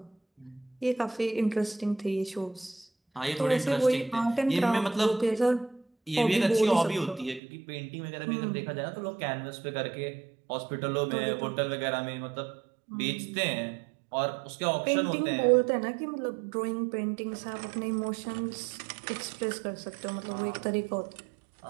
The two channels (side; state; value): left; drops out; at 7.4 s